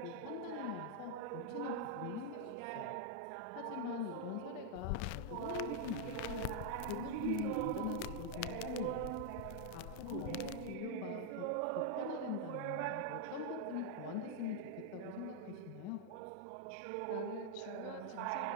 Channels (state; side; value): different; both; correlation 0.00